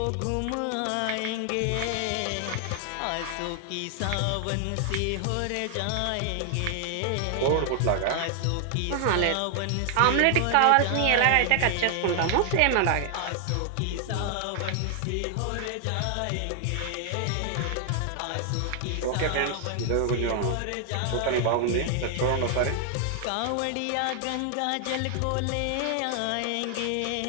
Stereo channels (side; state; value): both; different; correlation 0.00